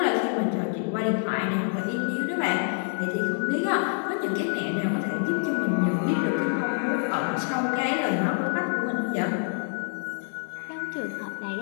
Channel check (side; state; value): right; silent; 60 dB below the other